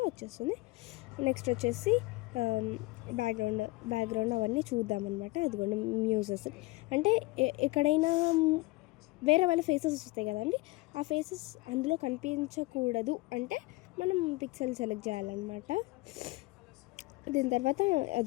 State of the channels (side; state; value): right; quieter; 21.8 dB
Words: వచ్చేస్తుంది. నెక్స్ట్ వచ్చేసి బ్యాక్గ్రౌండ్ అవన్నీ చూద్దామన్నమాట. అదిగోండి, మ్యూజెస్ అంటే ఎక్కడైనా వేరే వాళ్ళ ఫేసెస్ వస్తాయి కదండి, ఆ ఫేసెస్ అందులో కనిపించకూడదు అంటే మనం పిక్సెల్ సెలెక్ట్ చేయాలన్నమాట. దీని తర్వాత